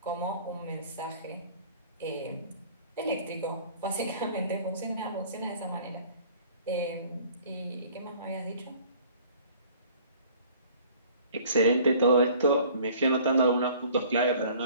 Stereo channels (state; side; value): inverted; both; correlation -0.51